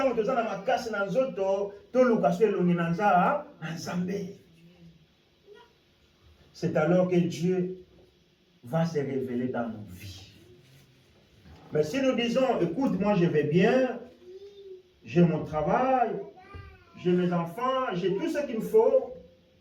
on te dans ma casse dans zoto, tout le cas, c'est alors que Dieu va se révéler dans nos vies. Mais si nous disons, écoute, moi je vais bien, j'ai mon travail, j'ai mes enfants, j'ai tout ce qu'il me faut,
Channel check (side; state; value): both; identical; correlation 1.00